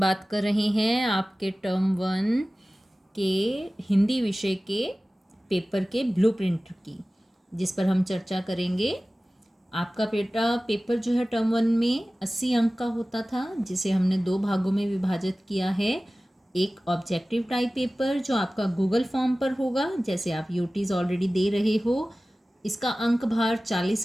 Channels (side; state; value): both; normal; correlation 0.97